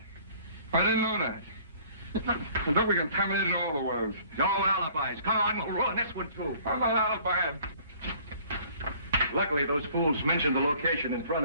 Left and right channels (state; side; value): inverted; both; correlation -0.54